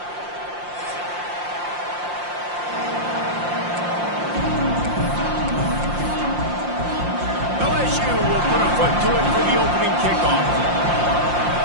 LSU will put a foot to it for the opening kickoff.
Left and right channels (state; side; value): late; left; 5.7 ms